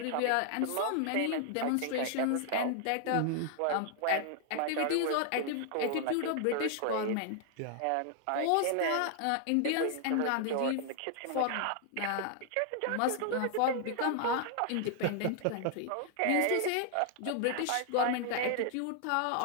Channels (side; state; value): both; different; correlation 0.00